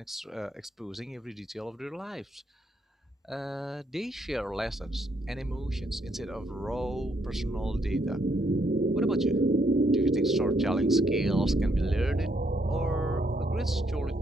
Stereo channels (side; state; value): both; normal; correlation 0.74